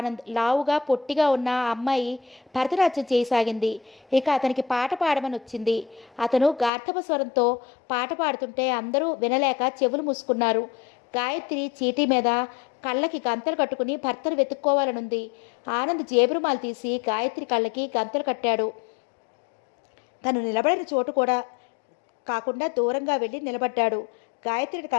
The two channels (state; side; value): drops out; right; at 6.7 s